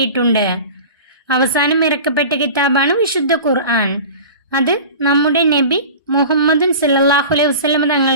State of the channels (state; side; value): inverted; both; correlation -0.36